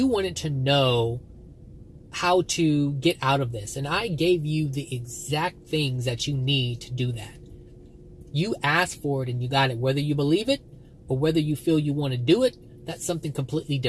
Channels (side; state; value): both; identical; correlation 1.00